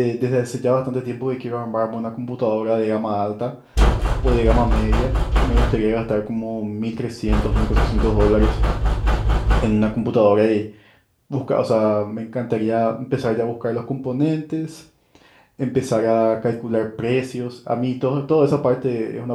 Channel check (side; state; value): both; identical; correlation 1.00